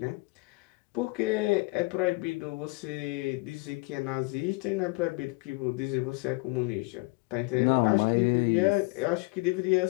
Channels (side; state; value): right; quieter; 27.0 dB